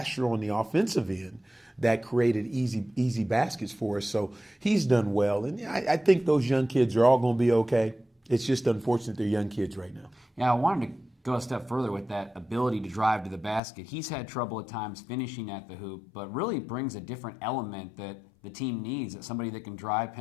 on the offensive end that created easy baskets for us. So he's done well. And I think those young kids are all going to be okay. It's just unfortunate they're young kids right now. Yeah, I wanted to go a step further with that ability to drive to the basket. He's had trouble at times finishing at the hoop, but really brings a different element that the team needs, somebody that can drive,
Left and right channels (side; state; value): right; drops out; at 13.6 s